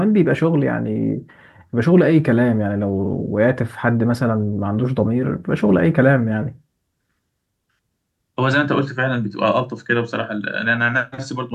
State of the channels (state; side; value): identical; both; correlation 1.00